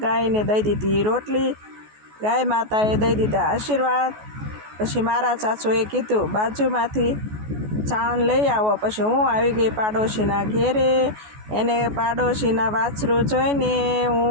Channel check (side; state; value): left; late; 14 ms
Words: ગાયને દઈ દીધી રોટલી, ગાય માતાએ દઈ દીધા આશીર્વાદ। પછી મારા સાસુએ કીધું બાજુમાંથી છાણ લઈ આવો। પછી હું આવી ગઈ પાડોશીના ઘેરે। એને પાડોશીના વાછરું જોઈને